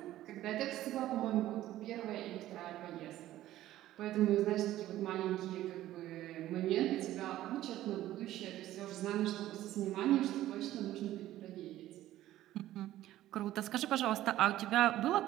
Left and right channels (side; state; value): left; quieter; 14.2 dB